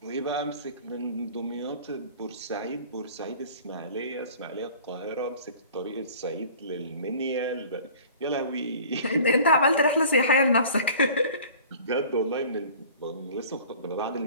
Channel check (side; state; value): both; inverted; correlation -0.45